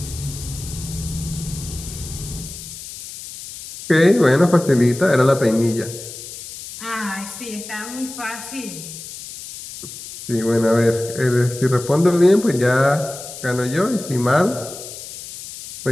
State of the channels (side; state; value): left; noise; hiss, 12 dB below the sound